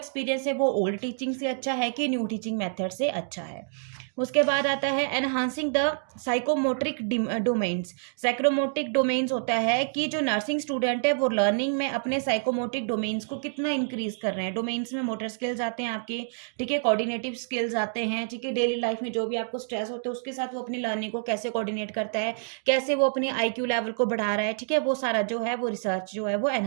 है वो ओल्ड टीचिंग से अच्छा है कि न्यू टीचिंग मेथड से अच्छा है। उसके बाद आता है एनहांसिंग द साइकोमोट्रिक डोमेन्स। साइकोमोट्रिक डोमेन्स होता है कि जो नर्सिंग स्टूडेंट है वो लर्निंग में अपने साइकोमोट्रिक डोमेन्स को कितना इंक्रीज कर रहे हैं। डोमेन्स में मोटर स्किल्स आते हैं आपके, ठीक है, कोऑर्डिनेटिव स्किल्स आते हैं, ठीक है, डेली लाइफ में जो भी आपको स्ट्रेस होता है उसके साथ वो अपनी लर्निंग को कैसे कोऑर्डिनेट करता है, कैसे वो अपने IQ लेवल को बढ़ा रहा है, ठीक है, वो सारा जो है वो रिसर्च जो है वो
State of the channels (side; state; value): left; silent; digital silence